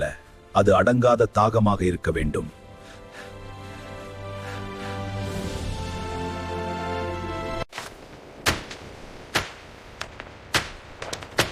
அது அடங்காத தாகமாக இருக்க வேண்டும்.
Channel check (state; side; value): identical; both; correlation 1.00